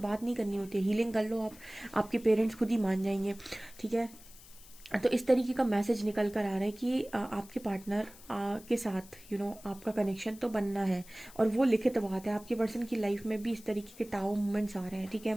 बात नहीं करनी होती है, हीलिंग कर लो आप, आपके पेरेंट्स खुद ही मान जाएंगे। ठीक है, तो इस तरीके का मैसेज निकल कर आ रहा है कि आपके पार्टनर के साथ आपका कनेक्शन तो बनना है और वो लिखित बात है। आपके पर्सन की लाइफ में भी इस तरीके के टाओ मोमेंट्स आ रहे हैं। ठीक है,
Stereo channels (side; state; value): left; noise; hiss, 20 dB below the sound